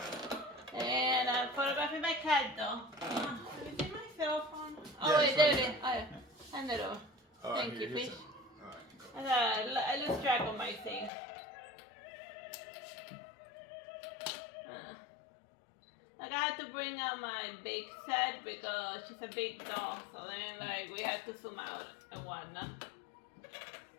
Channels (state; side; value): drops out; right; at 11.1 s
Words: And I'm photographing my cat though. Let me see my cell phone. Oh, wait, there it is. Oh, yeah. Hand it over. Thank you, fish. I lose track of my thing. Like I had to bring out my big set because she's a big dog, so then like we had to zoom out and whatnot.